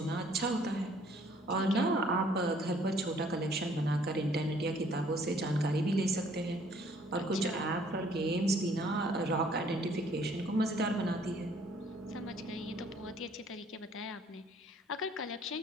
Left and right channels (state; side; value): normal; both; correlation 0.60